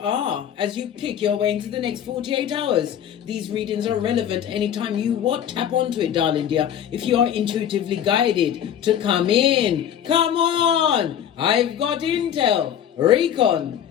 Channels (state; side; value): quieter; right; 9.7 dB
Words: as you pick your way into the next 48 hours. These readings are relevant anytime you tap onto it, darling dear. If you are intuitively guided to come in, come on! I've got intel.